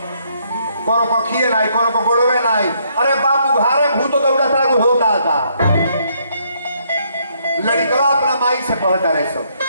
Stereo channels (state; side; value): inverted; both; correlation -0.71